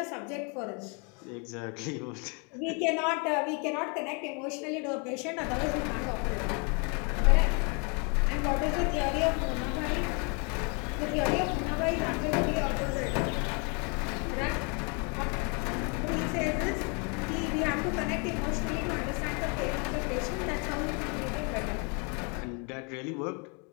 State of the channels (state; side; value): quieter; right; 34.5 dB